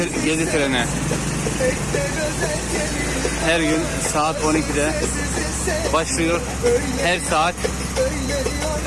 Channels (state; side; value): identical; both; correlation 1.00